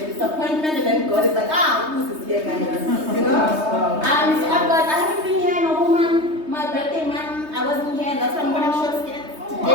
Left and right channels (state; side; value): late; left; 3.2 ms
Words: disappointment and then God is like, Lucy is here, guys. You know? So I haven't been here in a whole month. My birthday month, I wasn't here. That's why I'm wearing short skirts